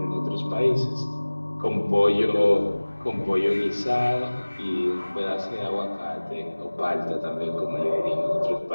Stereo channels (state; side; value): inverted; both; correlation -1.00